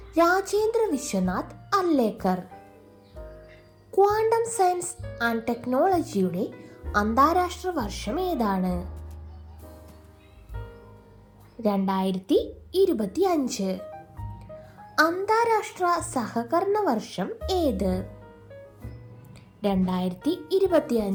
Rajendra Vishwanath Arlekar. Quantum science and ടെക്നോളജിയുടെ അന്താരാഷ്ട്ര വർഷം ഏതാണ്? 2025. അന്താരാഷ്ട്ര സഹകരണ വർഷം ഏത്?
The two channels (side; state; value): both; identical; correlation 1.00